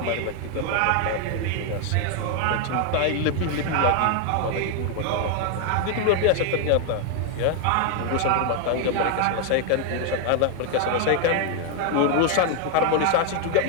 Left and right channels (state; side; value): different; both; correlation 0.00